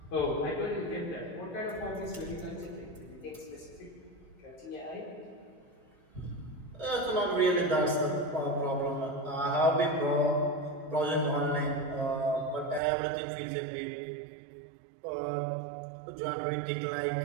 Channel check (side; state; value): left; drops out; at 12.8 s